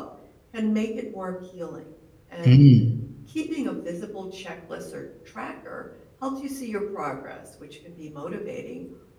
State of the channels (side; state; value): both; identical; correlation 1.00